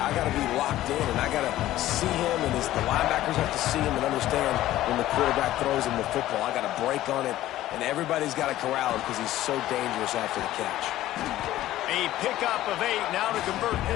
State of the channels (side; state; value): right; quieter; 14.5 dB